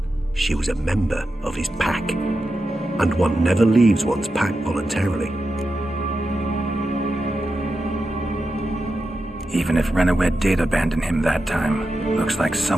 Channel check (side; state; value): both; normal; correlation 0.89